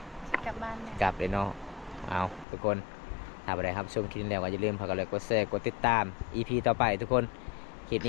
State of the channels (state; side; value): drops out; right; at 2.5 s